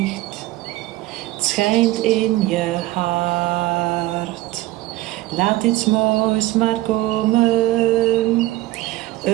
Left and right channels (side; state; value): left; quieter; 17.4 dB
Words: het schijnt in je hart. Laat iets moois maar komen,